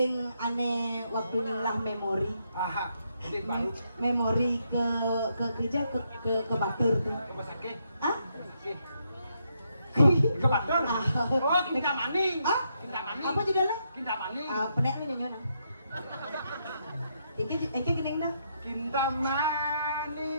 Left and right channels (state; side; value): inverted; both; correlation -0.78